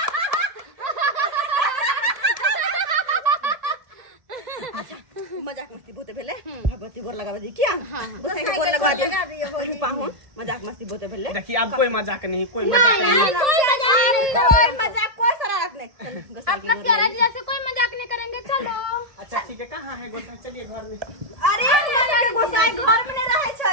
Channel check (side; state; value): left; late; 1.7 ms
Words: अच्छा मजाक मस्ती बोते भेले भगवती गोर लगावे दी क्या गोसाई के गोर लगा दिए पाहुन मजाक मस्ती बोते भेले। देखिए अब कोई मजाक नहीं कोई मजाक नहीं कोई शरारत नहीं अपना प्यारा जीजा से कोई मजाक नहीं करेंगे चलो। अच्छा ठीक है कहाँ है गोसाई चलिए घर में। अरे हमरा के गोसाई घर में नहीं रहे